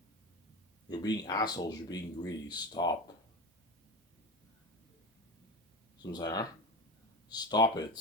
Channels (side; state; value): both; normal; correlation 0.25